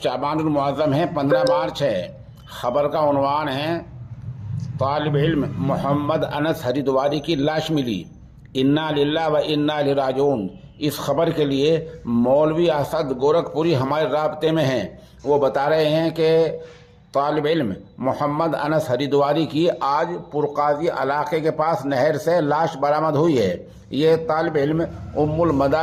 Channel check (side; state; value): both; identical; correlation 1.00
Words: المعظم ہے، 15 مارچ ہے۔ خبر کا عنوان ہے طالب علم محمد انس ہریدواری کی لاش ملی، انا للہ و انا الیہ راجعون۔ اس خبر کے لیے مولوی اسد گورکھپوری ہمارے رابطے میں ہیں۔ وہ بتا رہے ہیں کہ طالب علم محمد انس ہریدواری کی آج پرقاضی علاقے کے پاس نہر سے لاش برآمد ہوئی ہے۔ یہ طالب علم ام